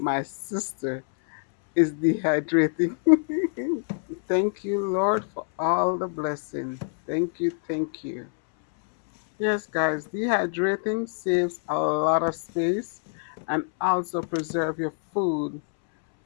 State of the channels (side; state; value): right; silent; 61 dB below the other